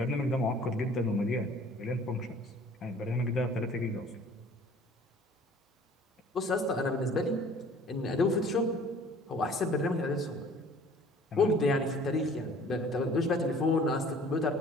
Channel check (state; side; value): normal; both; correlation 0.51